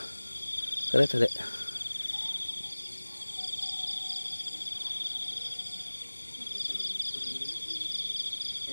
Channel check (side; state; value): both; inverted; correlation -1.00